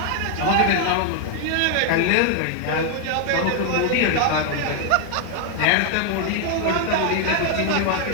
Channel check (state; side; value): different; both; correlation 0.00